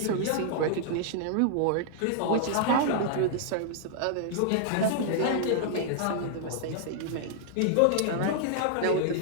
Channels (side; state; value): both; different; correlation -0.01